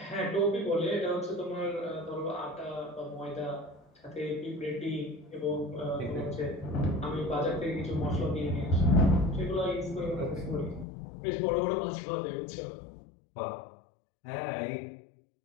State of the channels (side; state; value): right; drops out; at 10.9 s